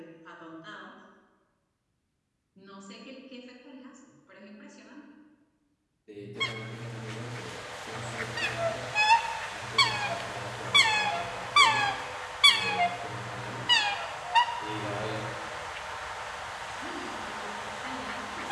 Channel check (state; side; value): identical; both; correlation 1.00